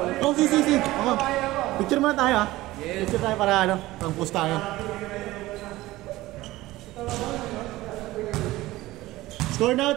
Oh, si. Okay. Picture muna tayo ha. Yes. Picture tayo para ano, pang post tayo. Score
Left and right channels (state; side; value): quieter; left; 17.8 dB